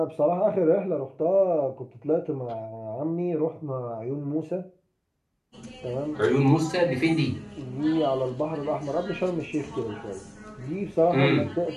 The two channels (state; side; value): identical; both; correlation 1.00